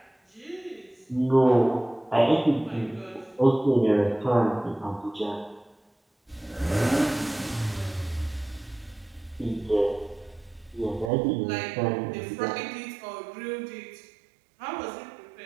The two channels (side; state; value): left; drops out; at 11.1 s